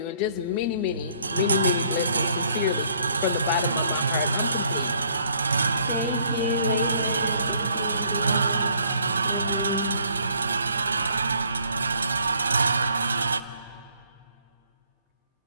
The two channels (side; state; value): both; inverted; correlation -0.63